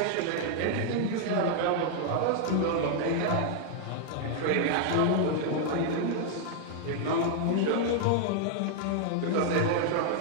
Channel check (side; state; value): both; different; correlation 0.00